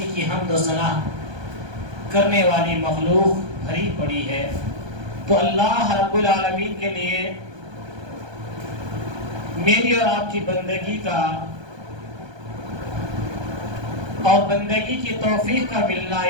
کی حمد و ثنا کرنے والی مخلوق بھری پڑی ہے. تو اللہ رب العالمین کے لیے میری اور آپ کی بندگی کا اور بندگی کی توفیق کا ملنا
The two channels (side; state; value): left; late; 1.2 ms